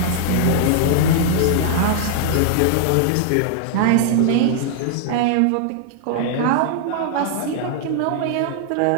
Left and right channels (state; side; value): different; both; correlation -0.01